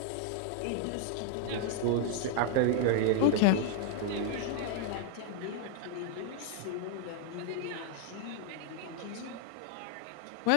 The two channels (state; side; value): different; both; correlation 0.00